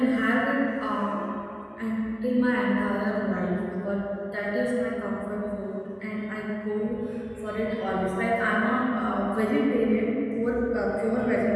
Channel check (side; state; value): both; identical; correlation 1.00